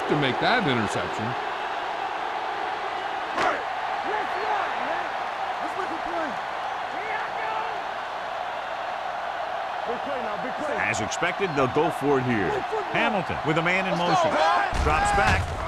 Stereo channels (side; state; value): both; identical; correlation 1.00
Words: to make that interception. As expected, they'll go for it here. Hamilton with a man in motion. Drops back.